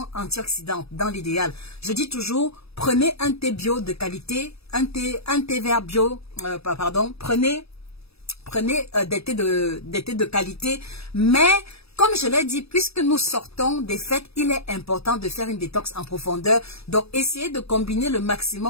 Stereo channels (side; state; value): right; late; 0.78 ms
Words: antioxydante dans l'idéal. Je dis toujours, prenez un thé bio de qualité, un thé vert bio, prenez des thés de qualité, mais comme je l'ai dit, puisque nous sortons des fêtes, il est important de faire une détox en profondeur. Donc, essayez de combiner le